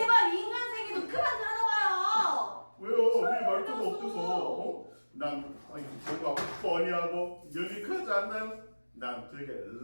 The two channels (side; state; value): both; inverted; correlation -1.00